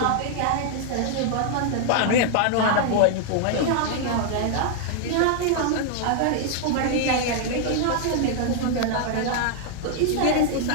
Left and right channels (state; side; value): different; both; correlation 0.00